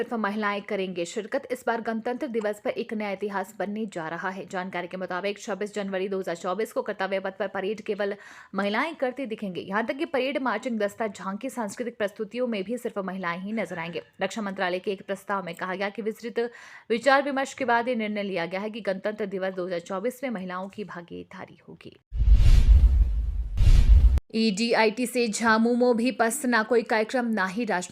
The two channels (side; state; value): both; identical; correlation 1.00